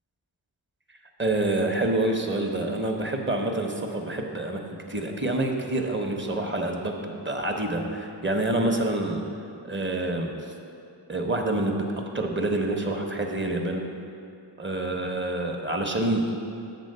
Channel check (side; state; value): both; normal; correlation 0.25